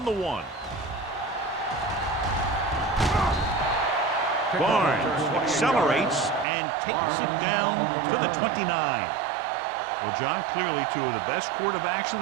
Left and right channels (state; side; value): drops out; left; at 6.5 s